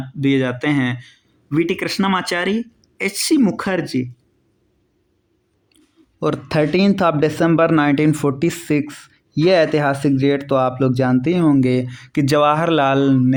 दिए जाते हैं, वी.टी. कृष्णमाचारी, एच.सी. मुखर्जी। और 13 दिसंबर 1946 ये ऐतिहासिक डेट तो आप लोग जानते ही होंगे कि जवाहरलाल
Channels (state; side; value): identical; both; correlation 1.00